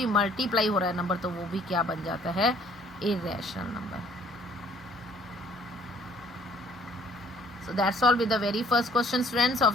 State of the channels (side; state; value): both; normal; correlation 0.59